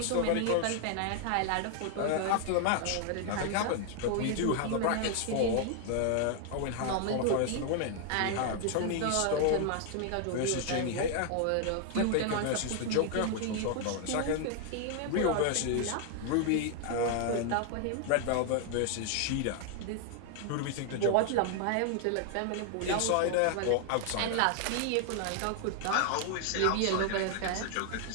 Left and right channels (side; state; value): both; different; correlation 0.00